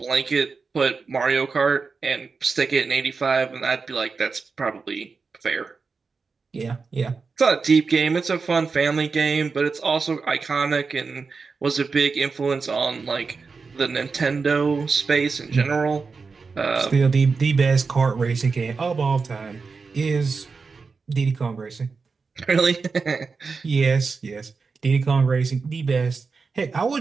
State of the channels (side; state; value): left; quieter; 4.7 dB